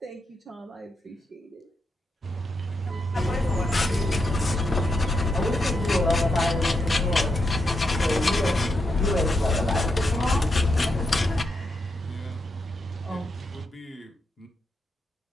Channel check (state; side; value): normal; both; correlation 0.83